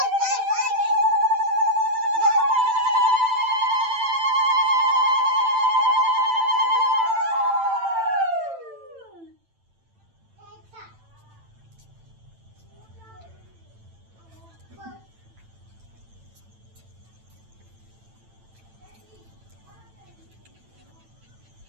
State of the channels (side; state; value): left; late; 9.0 ms